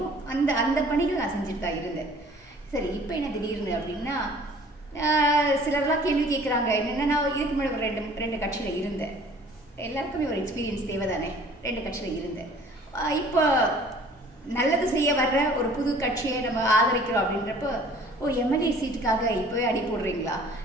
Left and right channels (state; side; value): normal; both; correlation 0.51